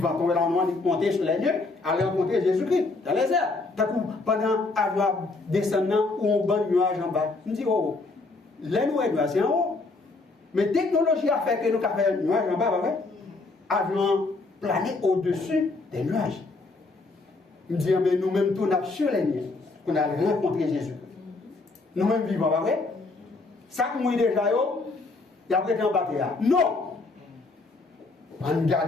tomber dans le monde, monter sur les nuées, aller rencontrer Jésus-Christ dans les airs. Pendant avoir descendant ou un bon nuage en bas, nous disons, oh, les nuages, c'est en haut. Mais la technologie a fait que nous avons fait un nuage en bas, avions plané au-dessus des nuages. Nous disons, mais nous-mêmes, tout nous sur les nuées, qu'on a rencontré Jésus. Nous-mêmes vivants, pas vrai? Ça que nous déjà, il y a prêté en bataille. Non! On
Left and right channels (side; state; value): right; quieter; 3.5 dB